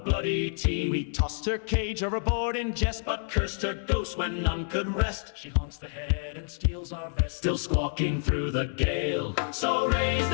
team. We tossed her cage overboard in jest, but cursed her ghost when none could rest. she haunts the head and steals our vest, Still squawking through the gale. So raise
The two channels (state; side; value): silent; right; 59 dB below the other